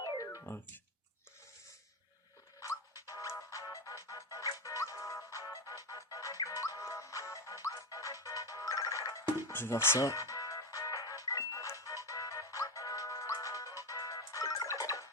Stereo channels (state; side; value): normal; both; correlation 0.14